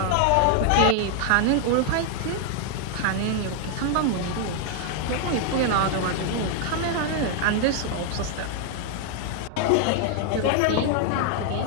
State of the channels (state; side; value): different; both; correlation 0.00